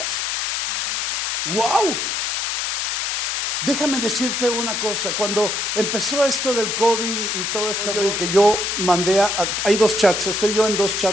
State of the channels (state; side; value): noise; left; hiss, 1 dB below the sound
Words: ¡Wow! Déjame decirte una cosa. Cuando empezó esto del COVID y todo este rollo, que yo mandé hay 2 chats, estoy yo en 2